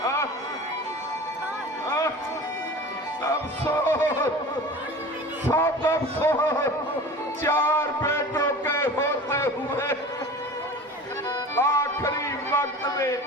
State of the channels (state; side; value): normal; both; correlation 0.37